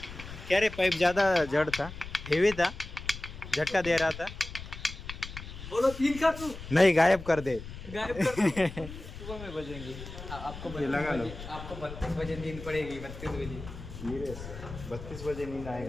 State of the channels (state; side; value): noise; left; rumble, 12 dB below the sound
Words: क्या रे, पाइप ज़्यादा जड़ था, हेवी था, झटका दे रहा था। बोलो 3 का तू नहीं, गायब कर दे। गायब कर दो। सुबह में बजेंगे आपको ये लगा लो। आपको 32 बजे नींद पड़ेगी 32 बजे। 32 बजे नींद